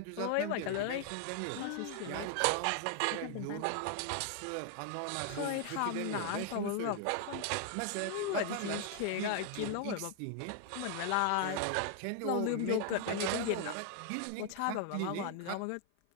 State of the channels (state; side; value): different; both; correlation 0.00